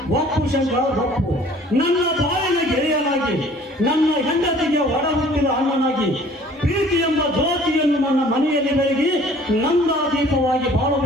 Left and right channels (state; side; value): normal; both; correlation 0.52